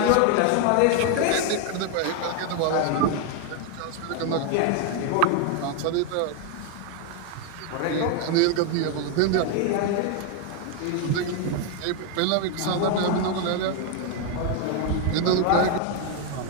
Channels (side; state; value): both; different; correlation 0.01